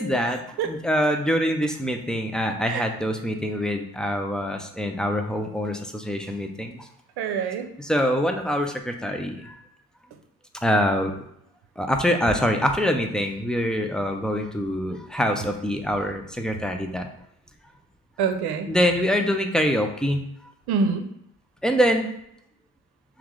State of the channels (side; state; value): both; normal; correlation 0.68